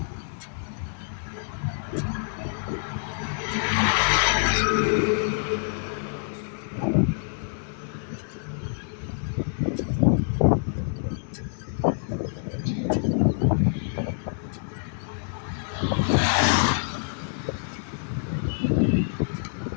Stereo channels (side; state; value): right; silent; digital silence